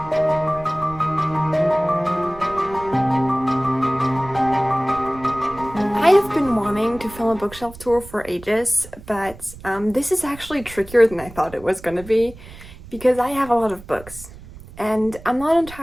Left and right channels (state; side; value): noise; right; rumble, 17 dB below the sound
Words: I have been wanting to film a bookshelf tour for ages, but this is actually trickier than I thought it was going to be because I have a lot of books and I'm not